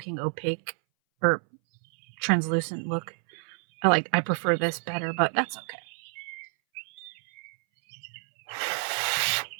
opaque or translucent look. I prefer this better, but that's okay.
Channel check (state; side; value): silent; left; 59 dB below the other